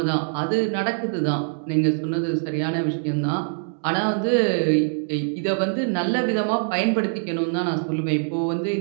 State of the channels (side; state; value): left; silent; digital silence